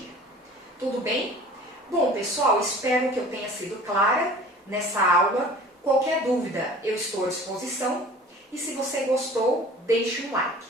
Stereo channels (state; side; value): normal; both; correlation 0.45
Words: Tudo bem? Bom, pessoal, espero que eu tenha sido clara nessa aula. Qualquer dúvida, eu estou à disposição. E se você gostou, deixe um like.